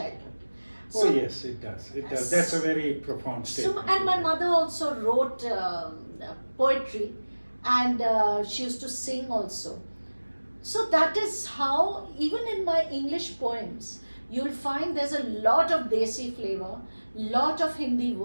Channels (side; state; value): both; inverted; correlation -1.00